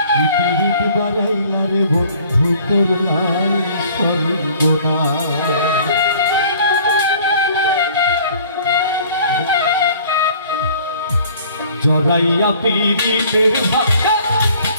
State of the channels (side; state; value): both; inverted; correlation -0.53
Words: পিরিত বাড়াইলা রে বন্ধু করলাই সর্বনাশ জড়াইয়া পিরিতের ভাষা